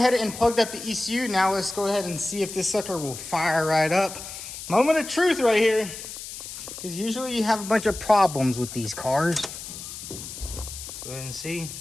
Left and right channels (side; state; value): left; noise; hiss, 10 dB below the sound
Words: and plugged up the ECU. Now let's go ahead and see if this sucker will fire right up. Moment of truth right here. Because usually you have a bunch of problems with these cars. Let's go ahead and see.